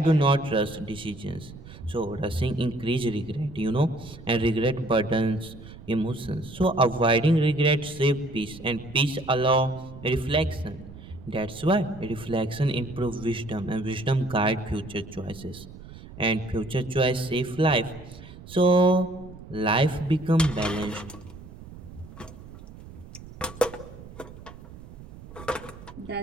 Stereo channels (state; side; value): noise; right; rumble, 16 dB below the sound